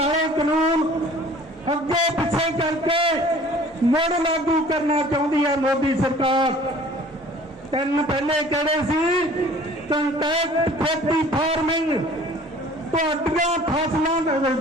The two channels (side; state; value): both; normal; correlation 0.49